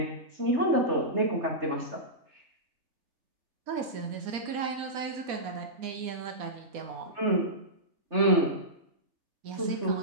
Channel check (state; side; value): late; left; 4.1 ms